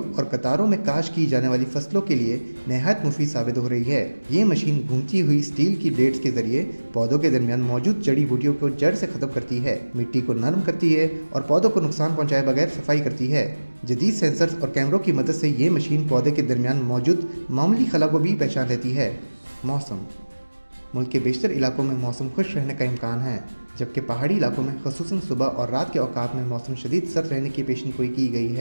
और कतारों में काश की जाने वाली फसलों के लिए नहायत मुफीद साबित हो रही है। ये मशीन घूमती हुई स्टील की ब्लेड्स के जरिए पौधों के दरमियान मौजूद जड़ी बूटियों को जड़ से ख़त्म करती है, मिट्टी को नरम करती है और पौधों को नुकसान पहुँचाए बगैर सफाई करती है। जदीद सेंसर्स और कैमरों की मदद से ये मशीन पौधे के दरमियान मौजूद मामूली खला को भी पहचान लेती है। मौसम। मुल्क के बेशतर इलाकों में मौसम खुश रहने का इम्कान है, जबकि पहाड़ी इलाकों में ख़ुसूसन सुबह और रात के औकात में मौसम शदीद सर्द रहने की पेशनगोई की गई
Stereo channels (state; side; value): inverted; both; correlation -1.00